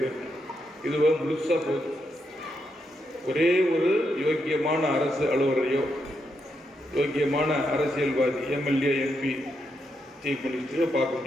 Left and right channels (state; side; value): normal; both; correlation 0.81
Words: இதுவோ முழுசாக போகுது. ஒரே ஒரு யோக்கியமான அரசு அலுவலரையோ யோக்கியமான அரசியல்வாதி எம்எல்ஏ எம்பி சீஃப் மினிஸ்டரையோ பார்க்க